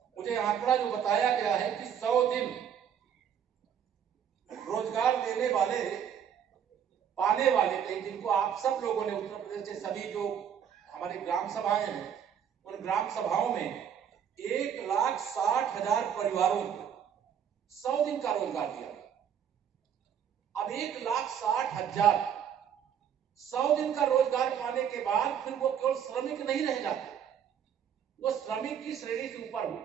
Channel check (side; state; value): left; quieter; 8.6 dB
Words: मुझे आंकड़ा जो बताया गया है कि 100 दिन रोजगार देने वाले पाने वाले थे, जिनको आप सब लोगों ने उत्तर प्रदेश के सभी जो हमारे ग्राम सभाएं हैं, उन ग्राम सभाओं में 1,60,000 परिवारों को 100 दिन का रोजगार दिया। अब 1,60,000 100 दिन का रोजगार पाने के बाद फिर वो केवल श्रमिक नहीं रह जाते, वो श्रमिक की श्रेणी से ऊपर